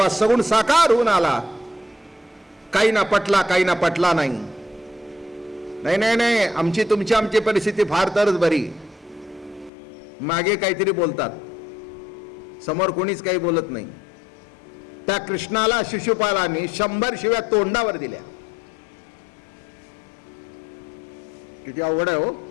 सगुण साकार होऊन आला, काही ना पटला काही ना पटला नाही. नाही नाही नाही, आमची आमची परिस्थिती फार तरच बरी. मागे काहीतरी बोलतात, समोर कोणीच काही बोलत नाही. त्या कृष्णाला शिशुपालाने 100 शिव्या तोंडावर दिल्या. किती अवघड आहे हो.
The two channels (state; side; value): drops out; right; at 9.7 s